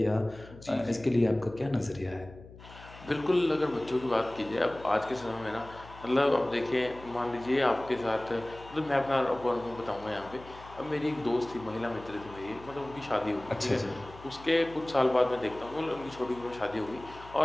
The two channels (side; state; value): left; noise; hum, 19 dB below the sound